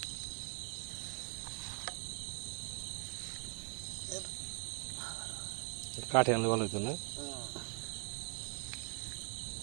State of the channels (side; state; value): left; quieter; 38.7 dB